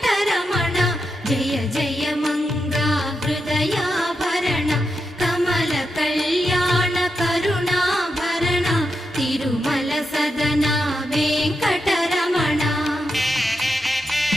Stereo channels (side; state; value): both; normal; correlation 0.86